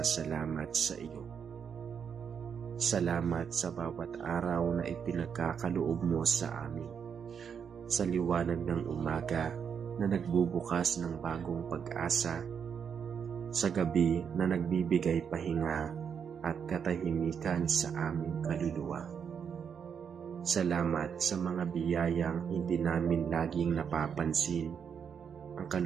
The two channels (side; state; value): left; quieter; 7.1 dB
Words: sa iyo. Salamat sa bawat araw na ipinagkakaloob mo sa amin. Sa liwanag ng umaga na nagbubukas ng bagong pag-asa. Sa gabi na nagbibigay pahinga at katahimikan sa aming kaluluwa. Salamat sa mga biyayang hindi namin laging napapansin, ang